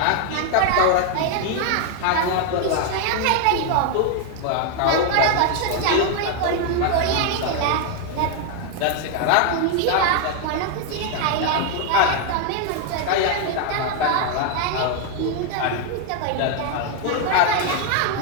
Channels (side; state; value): both; different; correlation 0.00